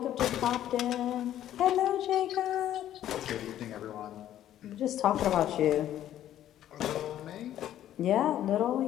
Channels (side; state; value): right; quieter; 11.9 dB